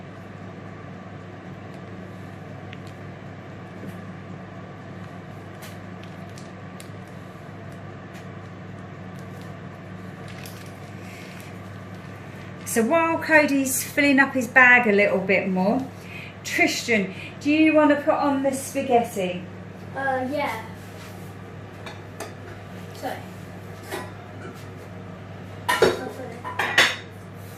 So while Cody's filling up his bag a little bit more, Tristan, do you want to put on the spaghetti? Yeah. So.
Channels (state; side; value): identical; both; correlation 1.00